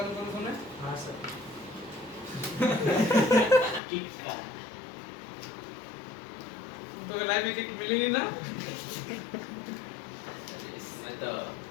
कौन सुना है? हाँ सर किक का तो लाइफ में किक मिली नहीं ना? इसमें तो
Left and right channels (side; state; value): right; drops out; at 3.8 s